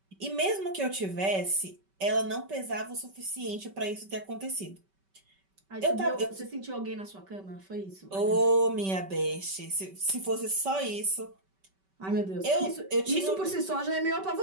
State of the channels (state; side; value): late; left; 5.2 ms